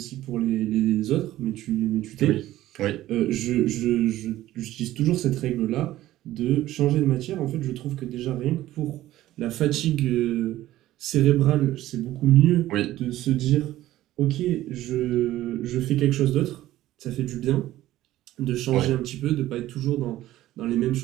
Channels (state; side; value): quieter; left; 14.9 dB